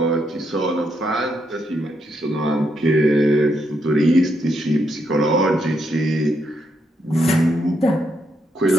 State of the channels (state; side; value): normal; both; correlation 0.78